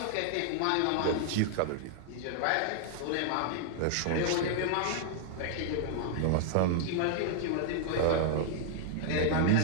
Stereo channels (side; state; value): both; different; correlation -0.01